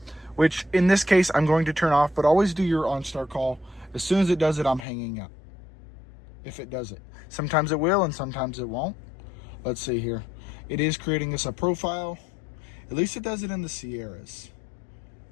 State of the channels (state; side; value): drops out; right; at 4.9 s